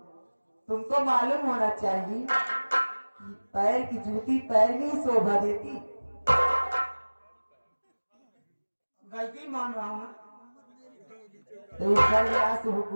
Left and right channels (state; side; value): inverted; both; correlation -1.00